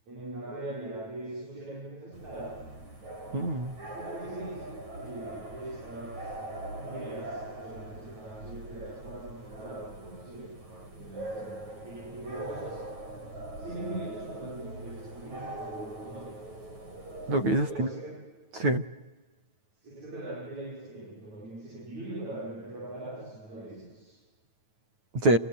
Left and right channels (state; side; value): late; left; 9.2 ms